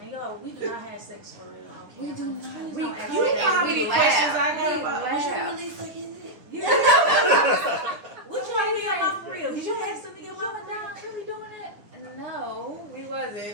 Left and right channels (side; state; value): left; late; 10 ms